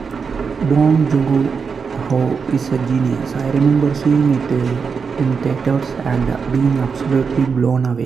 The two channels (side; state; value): left; quieter; 5.6 dB